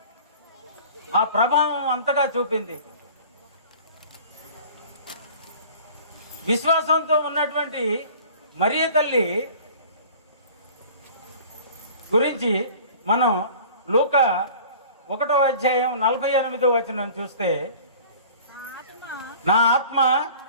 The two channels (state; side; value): inverted; both; correlation -0.45